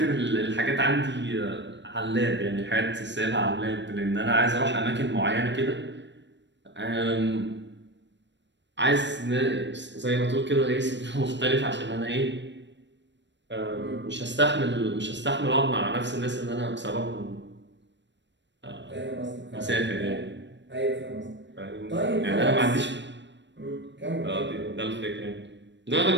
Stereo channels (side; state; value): left; late; 0.53 ms